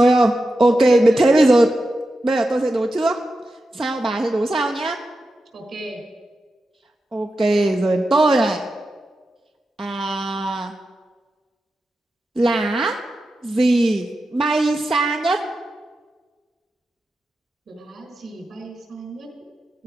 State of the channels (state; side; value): normal; both; correlation 0.90